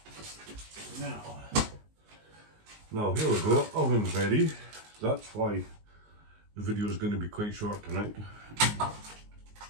Now here we go, oven's ready. That's why the video is going to be quite short tonight.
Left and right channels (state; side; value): late; left; 19 ms